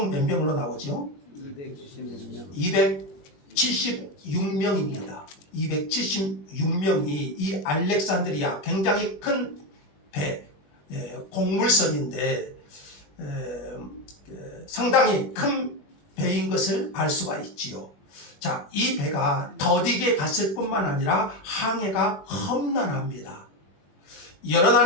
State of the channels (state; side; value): late; right; 21 ms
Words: 몇 명으로 나오죠? 276명입니다. 276명이 이 알렉산드리아 굉장히 큰 배, 곡물선인데 상당히 큰 배인 것을 알 수가 있지요. 자, 이 배가 더디게 갔을 뿐만 아니라 항해가 험난합니다. 여러